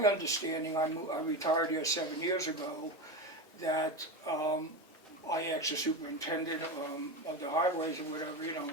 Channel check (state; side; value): normal; both; correlation 0.20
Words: understanding, I retired here 7 years ago, that I asked the superintendent of the highways or whatever,